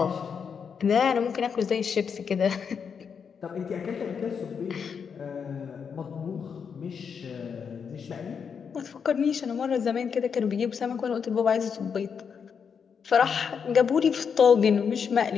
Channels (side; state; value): right; quieter; 6.6 dB